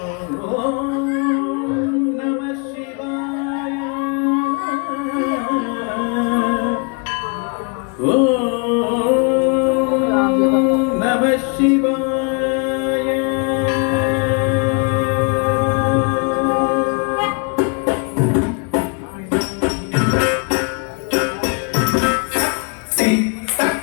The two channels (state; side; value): quieter; right; 34.8 dB